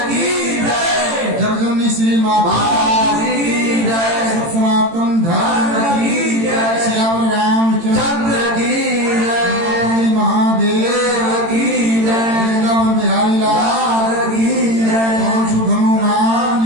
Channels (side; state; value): left; late; 18 ms